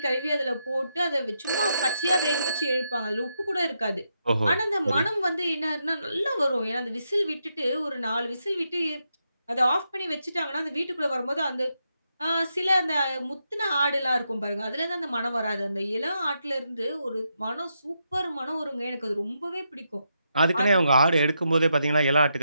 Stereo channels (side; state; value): both; inverted; correlation -0.82